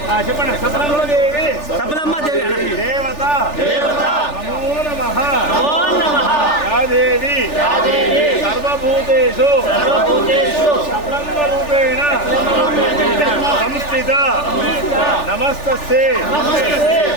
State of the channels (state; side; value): late; right; 3.4 ms